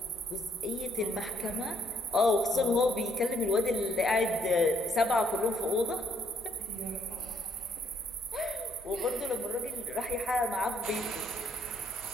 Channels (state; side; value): normal; both; correlation 0.68